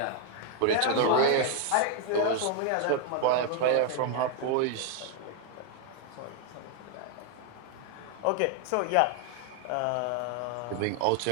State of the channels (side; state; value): both; different; correlation 0.01